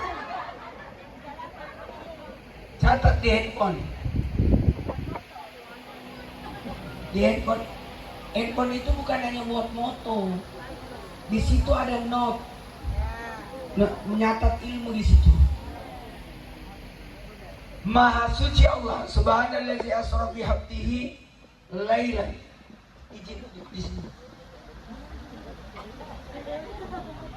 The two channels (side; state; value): both; identical; correlation 1.00